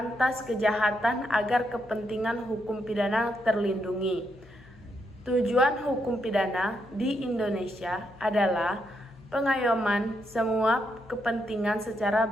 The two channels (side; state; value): left; noise; hum, 25 dB below the sound